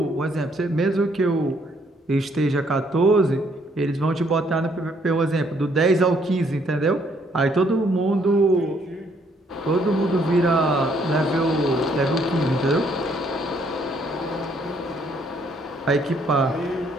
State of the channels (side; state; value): both; normal; correlation 0.68